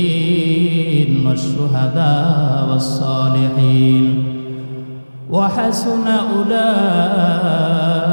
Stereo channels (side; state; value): both; inverted; correlation -1.00